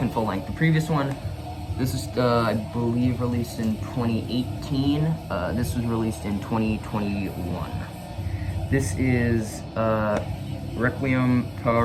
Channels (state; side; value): identical; both; correlation 1.00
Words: full length. The previous one, this is I believe released in 2018. This was released in 2021. This is Requiem